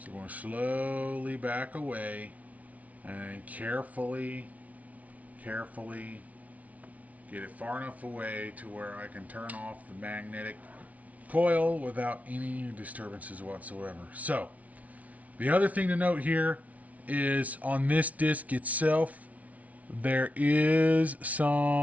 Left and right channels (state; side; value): late; left; 0.069 ms